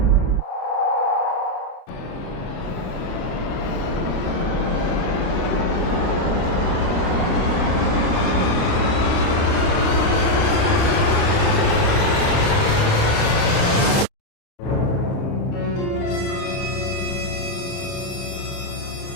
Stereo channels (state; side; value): late; right; 29 ms